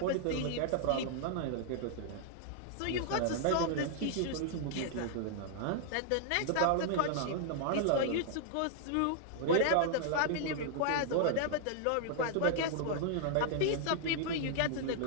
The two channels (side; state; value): both; different; correlation -0.01